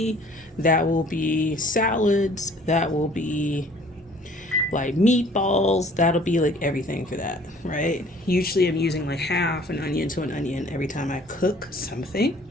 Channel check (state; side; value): normal; both; correlation 0.54